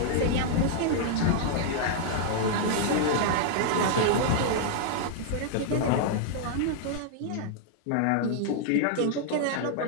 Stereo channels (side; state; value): both; different; correlation -0.01